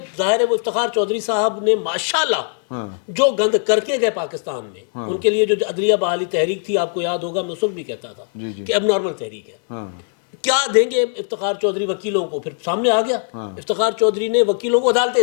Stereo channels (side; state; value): right; silent; 66 dB below the other